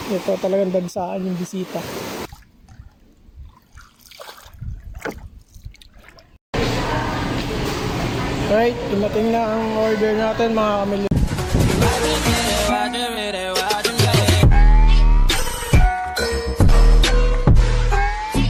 Ito talagang dagsaan yung bisita. Right, dumating na ang order natin mga kamilyo.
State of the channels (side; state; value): both; identical; correlation 1.00